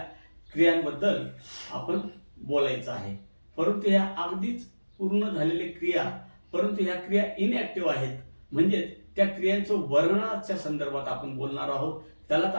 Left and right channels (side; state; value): both; inverted; correlation -1.00